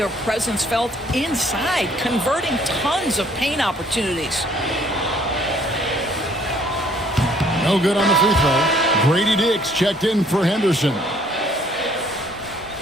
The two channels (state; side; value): normal; both; correlation 0.61